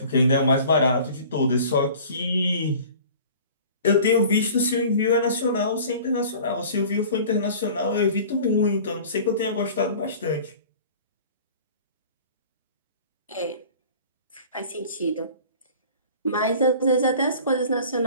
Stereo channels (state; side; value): inverted; both; correlation -0.44